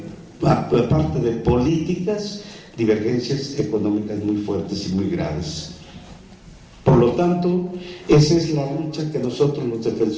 aparte de políticas, divergencias económicas muy fuertes y muy graves. Por lo tanto, esa es la lucha que nosotros los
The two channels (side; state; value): both; identical; correlation 1.00